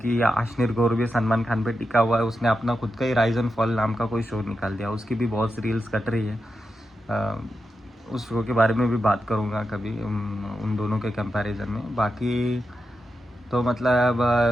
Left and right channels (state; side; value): normal; both; correlation 0.88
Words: आशनीर गौर भी सलमान खान पे टिका हुआ है, उसने अपना खुद का ही राइज एंड फॉल नाम का कोई शो निकाल दिया, उसकी भी बहुत रील्स कट रही है। उस शो के बारे में भी बात करूँगा कभी, उन दोनों के कंपैरिजन में। बाकी तो मतलब